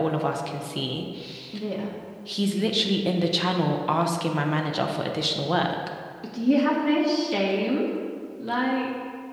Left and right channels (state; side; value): identical; both; correlation 1.00